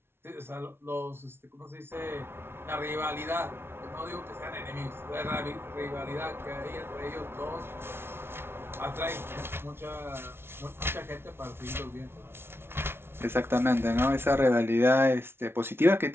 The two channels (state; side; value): late; left; 0.12 ms